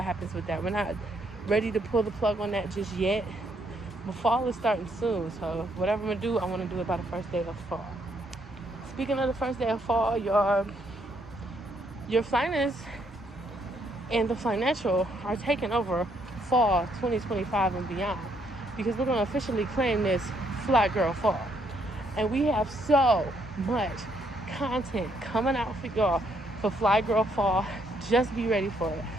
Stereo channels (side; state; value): both; normal; correlation 0.72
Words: happens with that. We're not ready to pull the plug on that just yet. But fall is starting soon, so whatever I'm going to do, I want to do it by the first day of fall. Speaking of the first day of fall, your Flyness and the Financial are taking over fall 2025 and beyond, because we're going to officially claim this Fly Girl Fall. And we have so much content coming out for y'all for Fly Girl Fall. Just be ready for it.